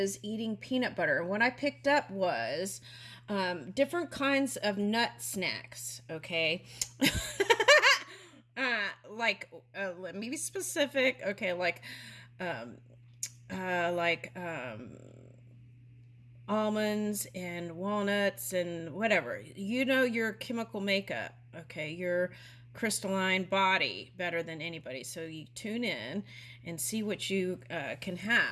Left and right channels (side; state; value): both; identical; correlation 1.00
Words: eating peanut butter. And what I picked up was different kinds of nut snacks, okay? Let me be specific. Okay, um, like almonds and walnuts and whatever. You know your chemical makeup, okay? Your crystalline body better than anybody. So you tune in and see what you can